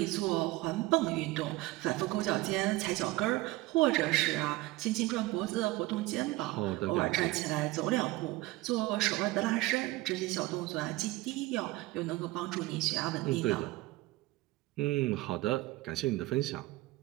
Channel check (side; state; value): left; quieter; 19.4 dB